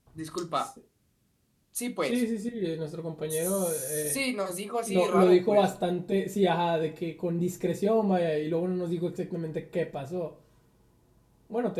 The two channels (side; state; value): both; identical; correlation 1.00